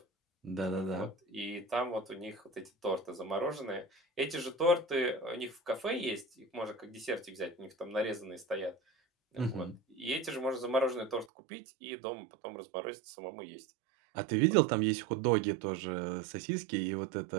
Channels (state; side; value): drops out; left; at 11.2 s